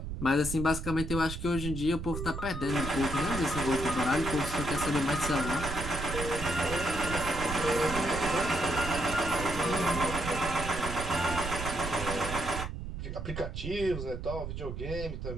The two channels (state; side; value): noise; right; rumble, 6 dB below the sound